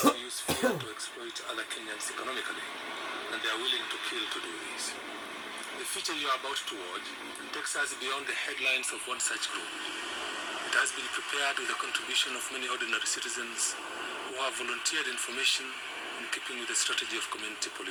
to use fear to exploit other Kenyans economically, and they are willing to kill to do this. The future you are about to watch takes us beyond the headlines of one such group. It has been prepared with the contribution of many ordinary citizens who have volunteered information in keeping with the strategy of community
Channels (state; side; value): identical; both; correlation 1.00